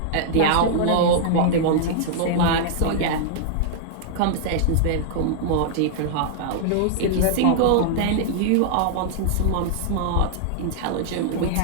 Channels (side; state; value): both; different; correlation -0.01